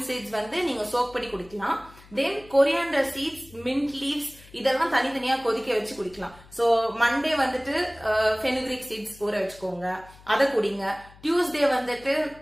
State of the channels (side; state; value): left; noise; hum, 23 dB below the sound